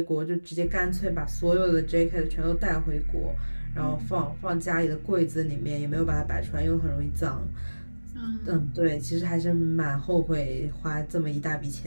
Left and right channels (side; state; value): both; inverted; correlation -1.00